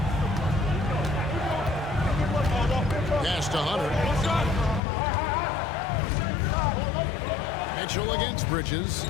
Pass to Hunter. Mitchell against Bridges.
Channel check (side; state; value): right; drops out; at 4.8 s